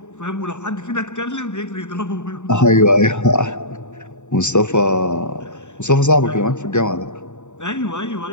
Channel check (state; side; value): late; right; 0.84 ms